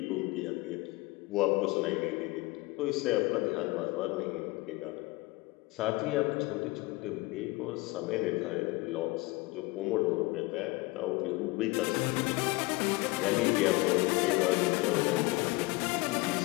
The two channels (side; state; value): right; quieter; 22.7 dB